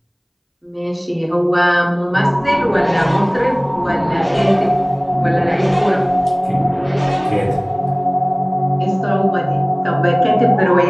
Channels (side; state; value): both; identical; correlation 1.00